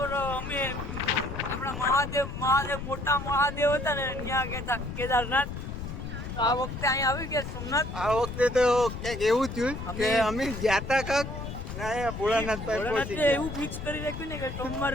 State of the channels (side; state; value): left; noise; rumble, 7 dB below the sound